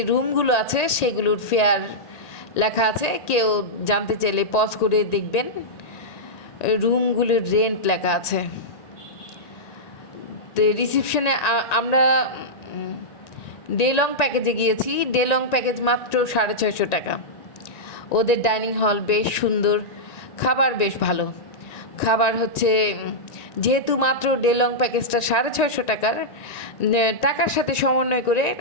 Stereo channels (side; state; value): right; late; 1.9 ms